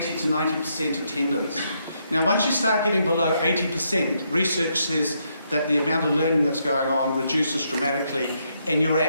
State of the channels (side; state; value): both; inverted; correlation -0.77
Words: to 90% attendance. Now, once you start getting below 80%, research says that the amount of learning that's going on reduces dramatically, and your